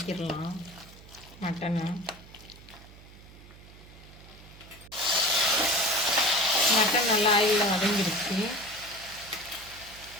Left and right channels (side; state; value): right; noise; hum, 20 dB below the sound